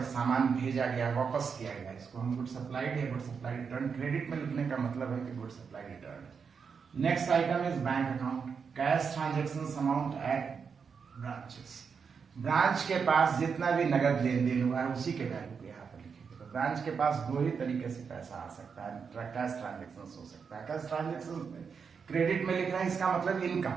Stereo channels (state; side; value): quieter; left; 6.0 dB